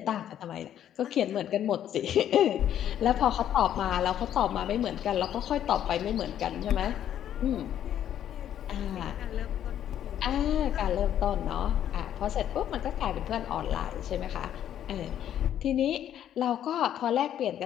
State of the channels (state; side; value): quieter; right; 10.6 dB